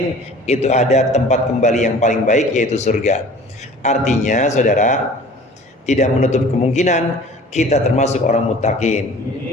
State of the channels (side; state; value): both; normal; correlation 0.45